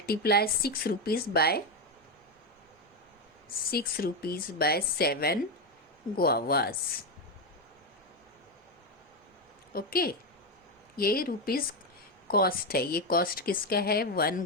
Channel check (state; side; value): normal; both; correlation 0.09